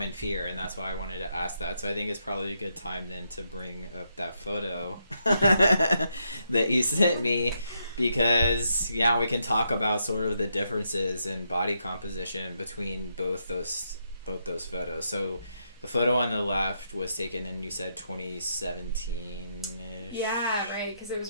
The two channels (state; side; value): inverted; both; correlation -0.79